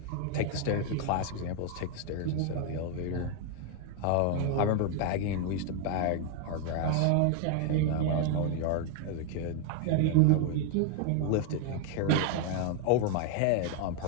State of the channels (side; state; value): both; different; correlation 0.00